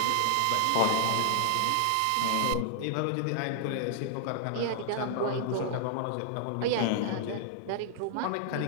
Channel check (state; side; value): different; both; correlation -0.01